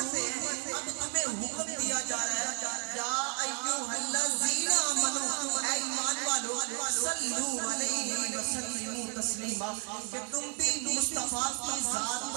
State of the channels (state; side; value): quieter; left; 39.4 dB